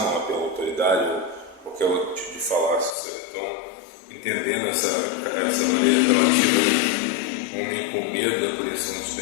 apelo à autoridade, ou qualquer outro tipo de falácia, sabe? Então, entendendo essa maneira apelativa, né? O homem com medo da punição dos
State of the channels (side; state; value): right; drops out; at 3.0 s